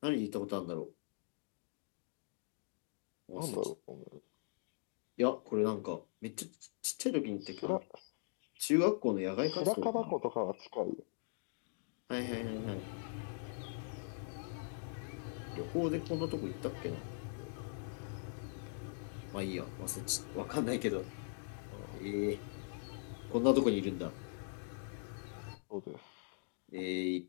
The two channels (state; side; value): silent; right; digital silence